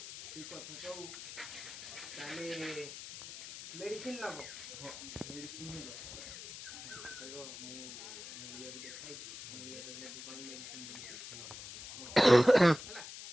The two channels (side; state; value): left; noise; hiss, 11 dB below the sound